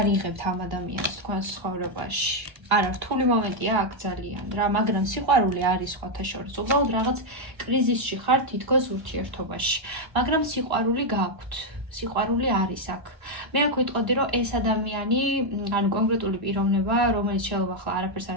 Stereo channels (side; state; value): left; late; 1.3 ms